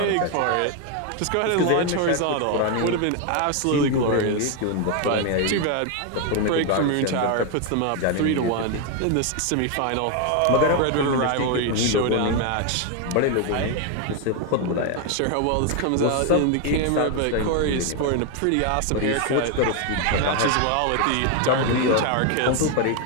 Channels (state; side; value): different; both; correlation 0.01